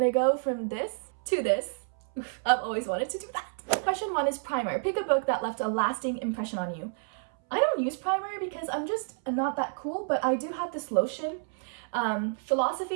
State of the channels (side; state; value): left; silent; 58 dB below the other